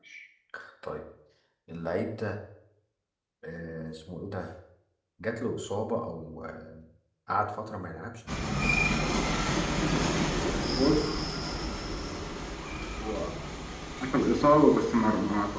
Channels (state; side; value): identical; both; correlation 1.00